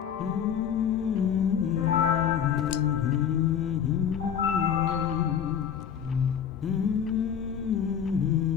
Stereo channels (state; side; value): quieter; right; 8.3 dB